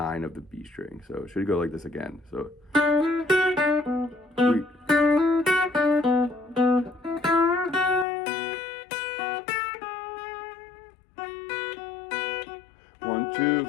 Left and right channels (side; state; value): right; drops out; at 8.1 s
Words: of the B string. So it should go like this again. So. One, two,